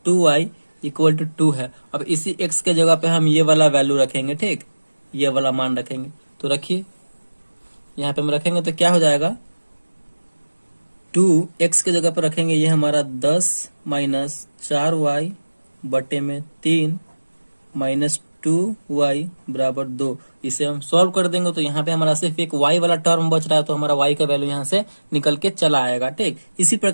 2y equal to 2 है। अब इसी x के जगह पे हम ये वाला वैल्यू रखेंगे, ठीक, ये वाला मान रखेंगे। तो रखिए यहाँ पे हम रखेंगे तो क्या हो जाएगा, 2x के जगह पर रखेंगे, ये हमारा 10 माइनस 4y बटे में 3 माइनस 2y बराबर 2। इसे हम सॉल्व कर देंगे तो यहाँ पे हमारा सिर्फ एक y वाला टर्म बच रहा है, तो हमारा y का वैल्यू यहाँ से निकल के चला आएगा, ठीक। इसी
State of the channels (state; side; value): inverted; both; correlation -1.00